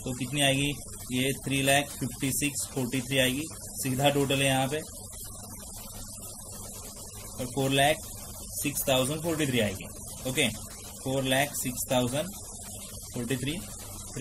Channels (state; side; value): identical; both; correlation 1.00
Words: तो कितनी आएगी, ये 3,56,43 आएगी, सीधा टोटल है यहाँ पे, और 4,06,043 आएगी, ओके। 4,06,043,